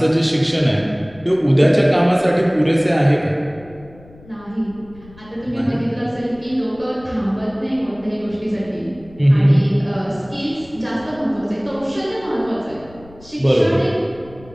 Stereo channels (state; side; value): noise; left; rumble, 23 dB below the sound